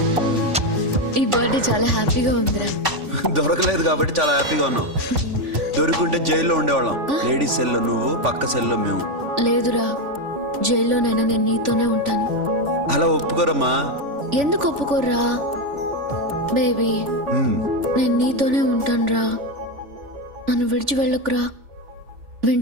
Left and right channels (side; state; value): left; late; 3.5 ms